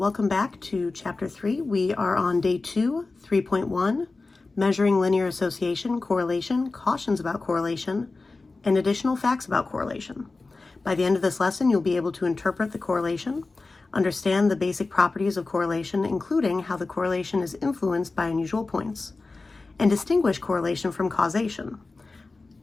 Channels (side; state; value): right; quieter; 3.6 dB